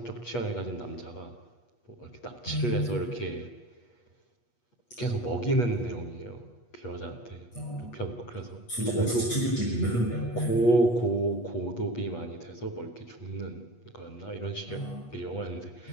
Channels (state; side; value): late; right; 8.3 ms